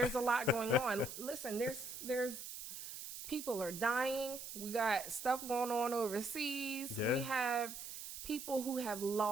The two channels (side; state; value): right; noise; hiss, 9 dB below the sound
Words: a lot going on. Listen, there's people are dying. We got stuff going on overseas. We have people who have